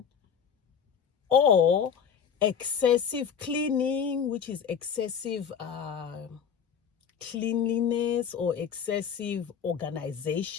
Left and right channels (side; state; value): right; quieter; 7.4 dB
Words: or excessive cleaning, which is excessive cleanliness or excessive